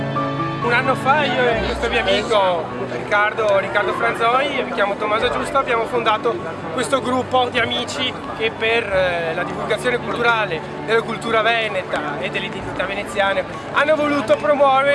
Un anno fa io e questo mio amico Riccardo Franzoi, mi chiamo Tommaso Giusto, abbiamo fondato questo gruppo di amici che per la divulgazione culturale della cultura veneta e dell'identità veneziana hanno voluto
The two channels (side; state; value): both; identical; correlation 1.00